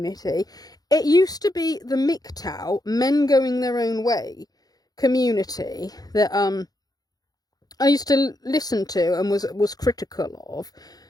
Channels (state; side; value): late; right; 0.19 ms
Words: it used to be the MGTOW, men going their own way community, that I used to listen to and was critical of.